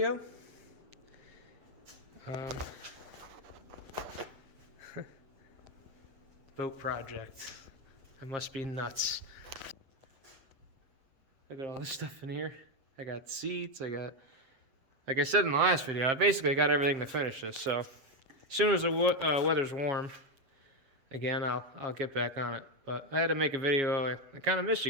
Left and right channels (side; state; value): left; late; 7.4 ms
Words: Boat project. I must be nuts. I got all this stuff in here. I got seats. I got, like I said in the last video, I basically got everything to finish this. So as soon as the weather's warm, again, I'll get back on it. But I had to make a video. I kind of miss you